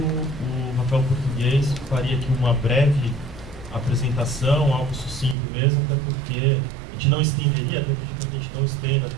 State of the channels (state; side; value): drops out; left; at 5.4 s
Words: Rafael Português faria aqui uma breve apresentação, algo sucinto mesmo, até porque a gente não estenderia, até pedir para que a gente não estenda